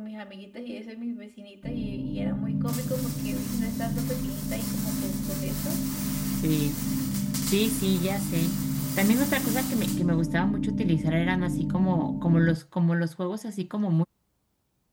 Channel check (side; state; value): both; identical; correlation 1.00